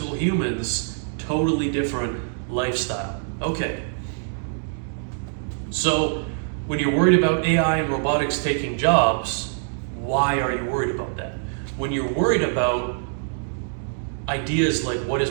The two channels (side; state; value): left; silent; digital silence